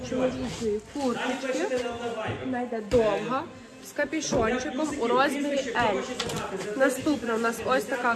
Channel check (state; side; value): identical; both; correlation 1.00